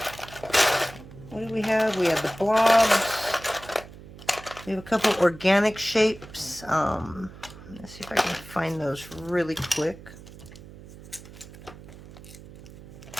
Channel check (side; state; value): right; noise; hum, 17 dB below the sound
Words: What do we have? We have the blobs. We have a couple organic shapes. Let's see if I can find those really quick.